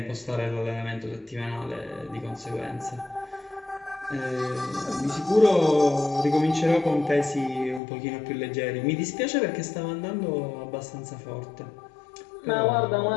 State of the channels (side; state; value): right; drops out; at 7.8 s